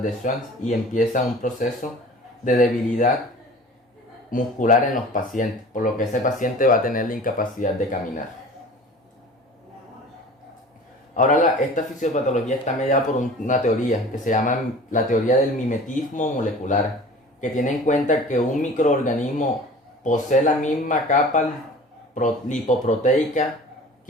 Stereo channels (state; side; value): normal; both; correlation 0.42